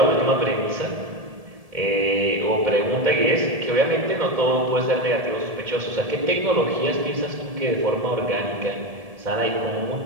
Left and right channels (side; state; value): left; late; 1.7 ms